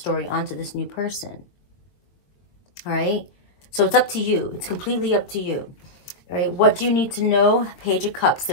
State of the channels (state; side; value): late; right; 22 ms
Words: onto this new person. All right? So it's up to you. It's completely up to you. All right? What do you need to know? Page of Cups.